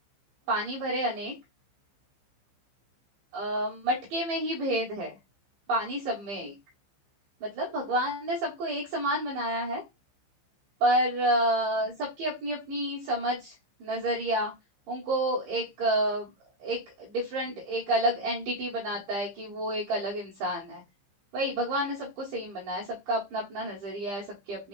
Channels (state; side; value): late; left; 15 ms